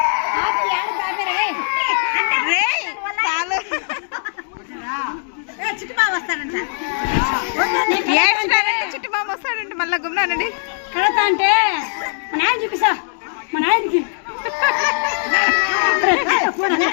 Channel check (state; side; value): silent; right; digital silence